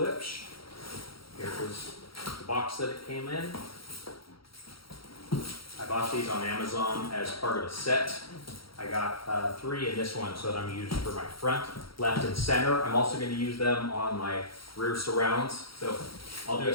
Here is the box that it came in. I bought these on Amazon as part of a set. I got 3 in this one, so that I'm used for my front, left, and center. I'm also going to use them on my rear surrounds. So I'll do a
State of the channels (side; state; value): right; late; 0.75 ms